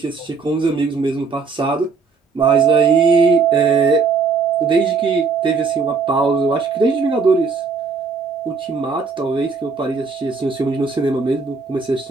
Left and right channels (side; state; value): left; quieter; 4.8 dB